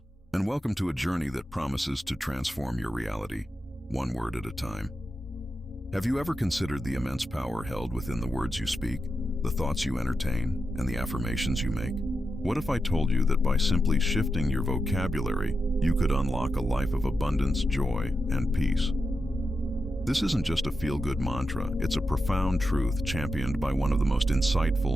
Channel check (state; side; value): normal; both; correlation 0.88